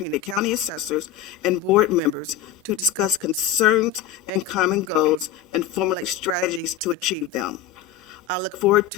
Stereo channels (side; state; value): right; quieter; 9.7 dB